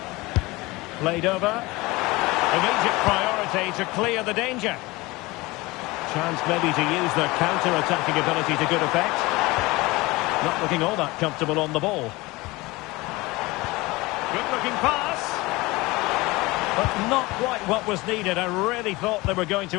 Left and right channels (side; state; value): right; quieter; 21.9 dB